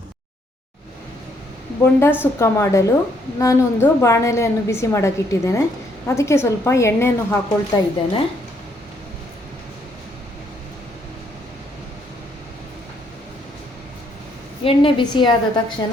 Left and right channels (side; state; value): both; normal; correlation 0.70